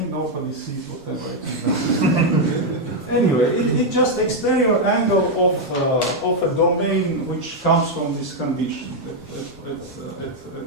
nobody sees whatever I do. Anyway, it's just exterior angle of a domain which comes from this condition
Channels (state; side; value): normal; both; correlation 0.01